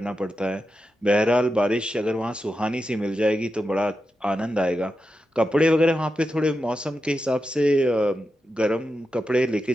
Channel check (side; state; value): both; normal; correlation 0.89